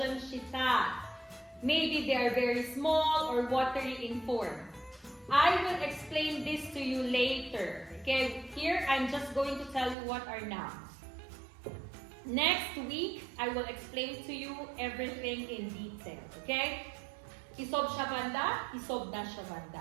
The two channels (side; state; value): left; drops out; at 10.0 s